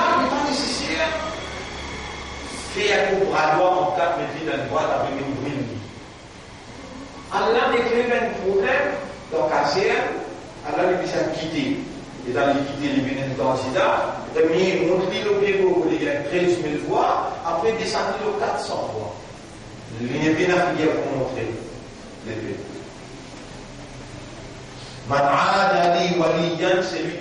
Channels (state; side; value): identical; both; correlation 1.00